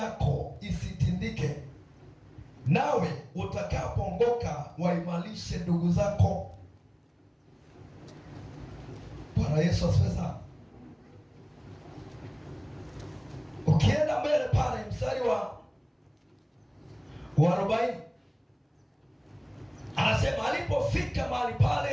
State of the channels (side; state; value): both; identical; correlation 1.00